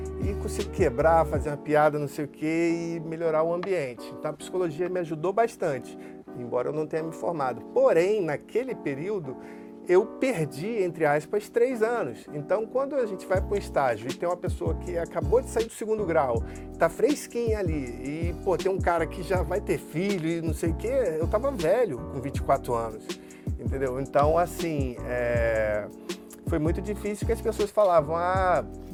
e consigo quebrar, fazer uma piada, não sei o quê, e melhorar o ambiente. Então, a psicologia me ajudou bastante, embora eu não tenha me formado. Porém, naquele período, eu perdi, entre aspas, 3 anos. Então, quando a gente vai para um estágio e tem uma pessoa que acabou de sair do 2º grau, tá fresquinha ali, e, pô, tem um cara que já vai ter filho e não sei o quê, eu tava velho, com 24 anos, entendeu? Então, assim, foi muito difícil, que as pessoas falavam,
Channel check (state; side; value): identical; both; correlation 1.00